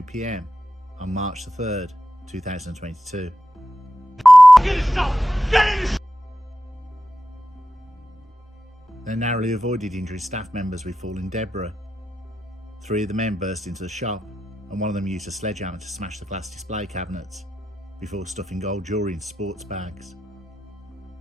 PM on March 3rd, 2022. They narrowly avoided injuring staff members with falling debris. 3 of the men burst into the shop and one of them used a sledgehammer to smash the glass display cabinets before stuffing gold jewellery into sports bags.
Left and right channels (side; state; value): both; normal; correlation 0.91